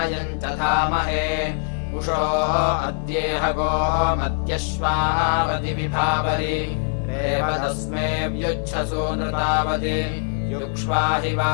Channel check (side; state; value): right; silent; digital silence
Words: च धामहे उषो अद्येह गोमत्यश्वावति विभावरि रेवतस्मे व्युच्छसो नृतावति युक्ष्वा हि